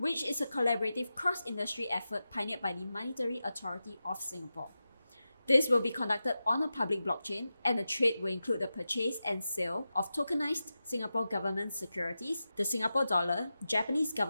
is a collaborative cross-industry effort pioneered by the Monetary Authority of Singapore. This will be conducted on a public blockchain, and the trade will include the purchase and sale of tokenized Singapore government securities, the Singapore dollar, Japanese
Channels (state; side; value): inverted; both; correlation -0.92